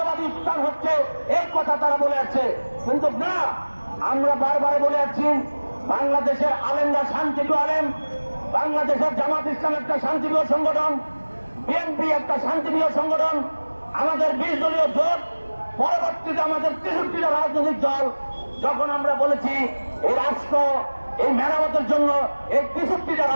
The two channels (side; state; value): both; inverted; correlation -1.00